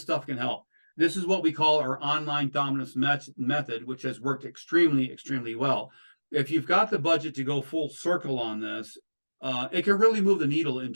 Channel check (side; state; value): both; inverted; correlation -1.00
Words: stuff can help. This is what we call our online dominance method, which has worked extremely, extremely well. If you've got the budget to go full circle on this, it can really move the needle in